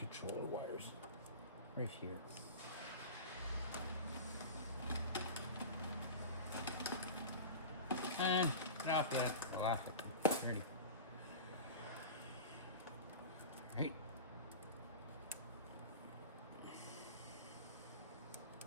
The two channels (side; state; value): both; inverted; correlation -0.32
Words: wires right here. And get off yet. I'll off it. Ready. Alright.